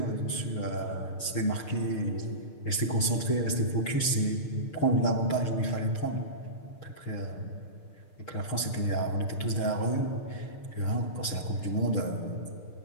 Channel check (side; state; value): right; late; 6.6 ms